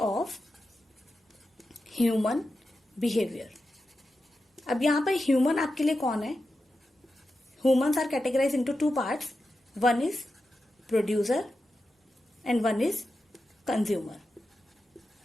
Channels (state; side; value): normal; both; correlation 0.90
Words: human behaviour. अब यहां पर ह्यूमन आपके लिए कौन है? Humans are categorise into two parts, one is producer and one is consumer,